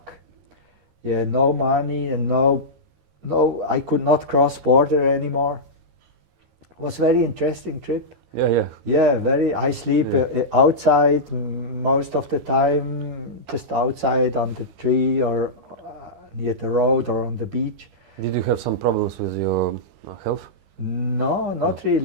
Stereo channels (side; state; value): left; late; 13 ms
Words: Yeah, no money and no, I could not cross border anymore. It was a very interesting trip. Yeah. Yeah, I sleep outside most of the time, just outside on the tree or near the road or on the beach. Did you have some problems with your health? No, not